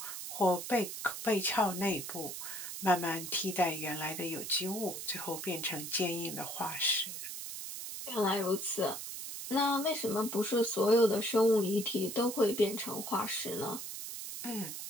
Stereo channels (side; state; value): right; noise; hiss, 7 dB below the sound